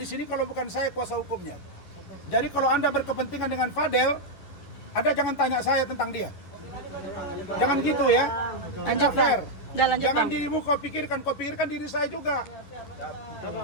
sini kalau bukan saya kuasa hukumnya. Jadi kalau Anda berkepentingan dengan Fadel, Anda jangan tanya saya tentang dia. Jangan gitu ya. Tidak fair. Jangan dirimu kau pikirkan diri saya juga.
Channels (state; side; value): late; right; 11 ms